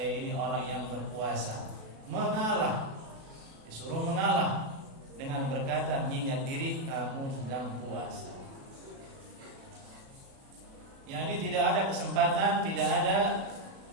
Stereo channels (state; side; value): late; left; 37 ms